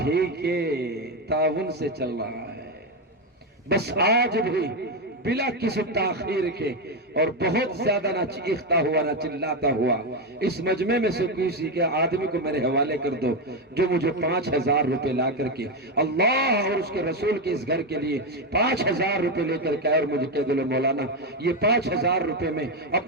ہی کے تعاون سے چل رہا ہے۔ بس آج بھی بلا کسی تاخیر کے اور بہت زیادہ نہ چیختا ہوا نہ چلاتا ہوا اس مجمع میں سے کسی کے آدمی کو میرے حوالے کر دو جو مجھے 5,000 روپے لا کر کے اللہ اور اس کے رسول کے اس گھر کے لیے 5,000 روپے لے کر کے اور مجھے کہہ دو مولانا یہ 5,000 روپے میں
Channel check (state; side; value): normal; both; correlation 0.08